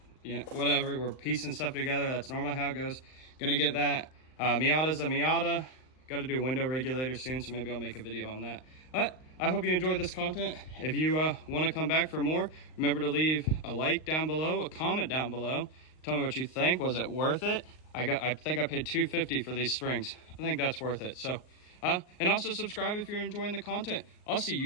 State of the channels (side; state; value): right; late; 38 ms